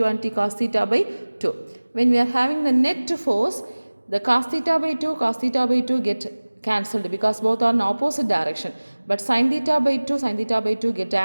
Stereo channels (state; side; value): inverted; both; correlation -1.00